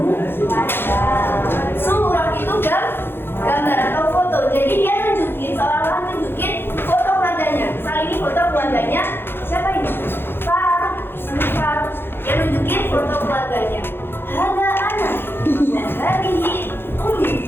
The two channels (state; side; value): late; right; 0.10 ms